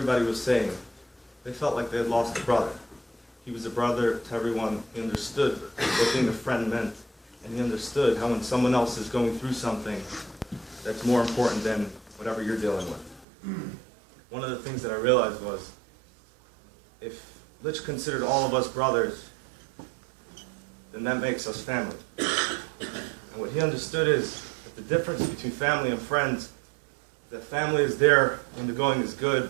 was saying, they felt like they had lost a brother. He was a brother to everyone. He understood what being a friend meant, and he understood how when someone else is going through something that's more important than whatever you're dealing with. One of the things that I realized was, if Litch considered all of us brothers, then that makes us family. And what he understood is that the difference between family and friends, that family is there when the going is good,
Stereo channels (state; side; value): drops out; left; at 13.2 s